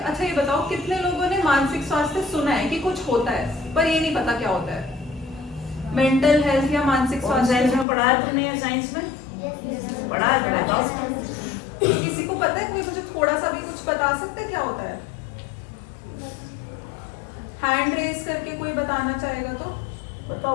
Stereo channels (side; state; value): right; drops out; at 7.9 s